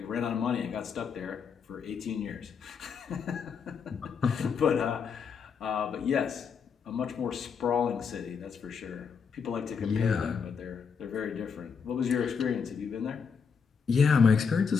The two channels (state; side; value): quieter; right; 6.1 dB